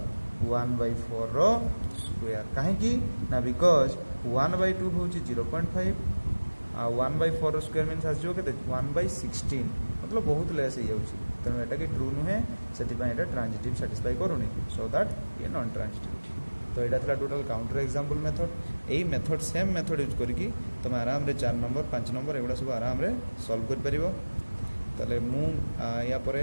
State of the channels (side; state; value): both; inverted; correlation -1.00